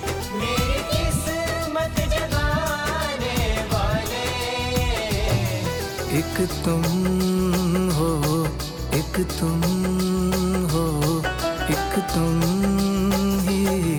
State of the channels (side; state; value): both; identical; correlation 1.00